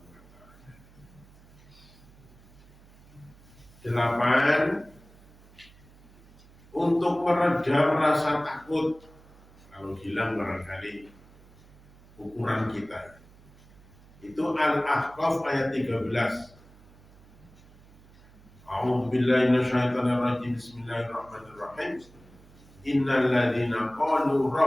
ta'ala. 8. Untuk meredam rasa takut, kalau hilang barangkali ukuran kita. Itu Al-Ahqaf ayat 13. A'udzu billahi minasyaitonir rajim. Bismillahirrahmanirrahim. Innal ladzina qalu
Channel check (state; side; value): noise; right; hum, 25 dB below the sound